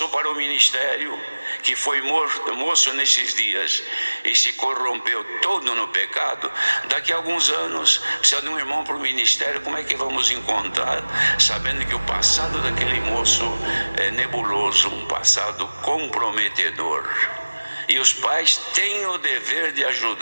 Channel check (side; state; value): both; inverted; correlation -1.00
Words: para o ministério, que foi moço nesses dias e se corrompeu todo no pecado. Daqui a alguns anos precisa de um irmão para o ministério. Como é que vamos encontrar, sabendo que o passado daquele moço é nebuloso, um passado comprometedor? E os pais têm o dever de